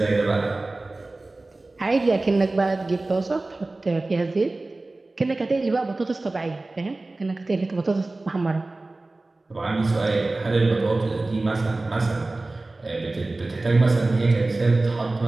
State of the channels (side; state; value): left; quieter; 3.1 dB